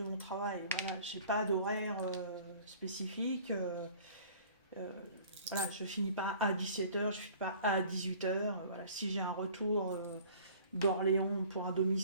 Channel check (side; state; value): both; inverted; correlation -0.49